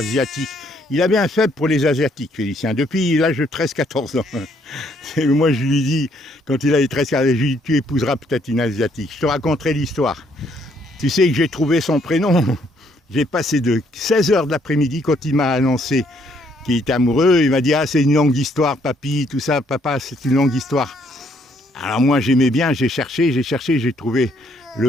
Il avait un faible pour les Asiatiques, Félicien, depuis l'âge de 13-14 ans. Moi, je lui dis, quand il avait 13-14 ans, je lui dis, tu épouseras peut-être une Asiatique. Je te raconterai l'histoire. Tu sais que j'ai trouvé son prénom. J'ai passé de 16h de l'après-midi, quand il m'a annoncé qu'il était amoureux, il m'a dit, ah, c'est une longue histoire, papy, tout ça, papa, c'est une longue histoire. Alors moi, j'aimais bien, j'ai cherché, j'ai trouvé le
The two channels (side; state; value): both; normal; correlation 0.69